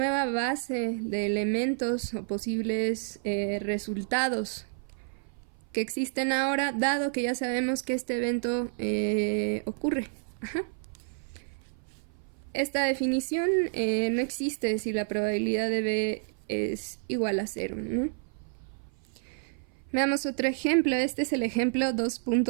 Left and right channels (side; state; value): left; silent; 56 dB below the other